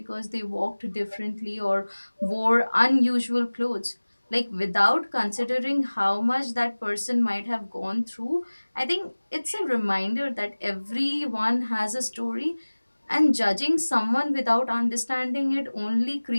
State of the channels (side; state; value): both; inverted; correlation -1.00